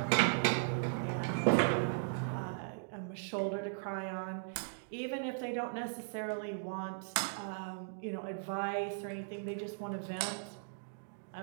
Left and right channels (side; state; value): left; silent; digital silence